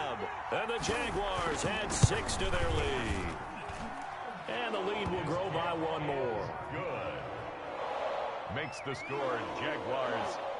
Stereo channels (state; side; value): identical; both; correlation 1.00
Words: And the Jaguars add 6 to their lead. And the lead will grow by 1 more. Good. Makes the score Jaguars